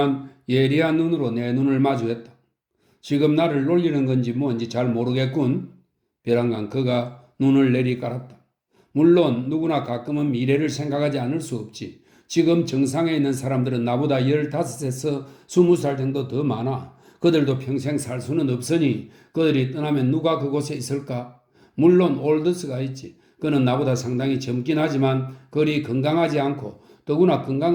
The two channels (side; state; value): both; identical; correlation 1.00